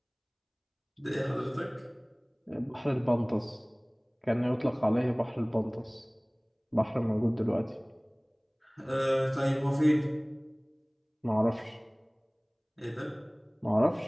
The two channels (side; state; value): both; identical; correlation 1.00